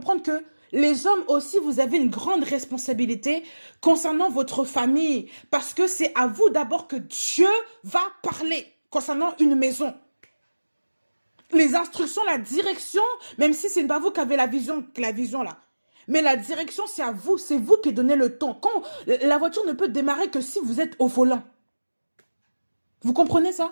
que les hommes aussi, vous avez une grande responsabilité concernant votre famille. Parce que c'est à vous d'abord que Dieu va parler concernant une maison. Les instructions, la direction, même si ce n'est pas vous qui avez la vision là. Mais la direction, c'est à vous, c'est vous qui donnez le ton. La voiture ne peut démarrer que si vous êtes au volant. Vous comprenez ça?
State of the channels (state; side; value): inverted; both; correlation -1.00